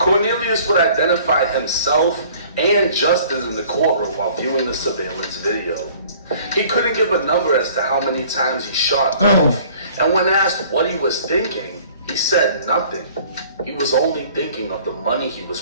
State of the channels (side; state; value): both; inverted; correlation -0.52